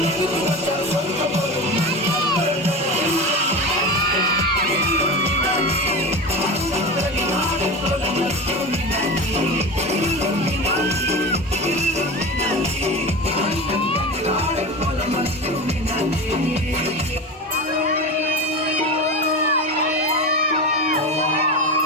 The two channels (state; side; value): normal; both; correlation 0.26